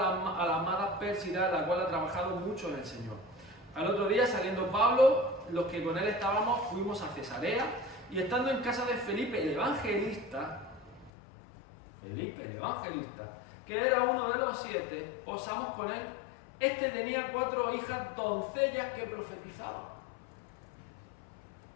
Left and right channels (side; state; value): right; drops out; at 11.1 s